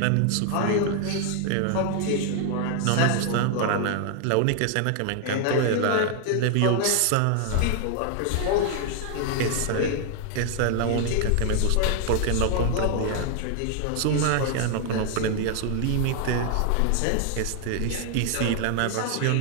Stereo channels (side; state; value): both; different; correlation 0.00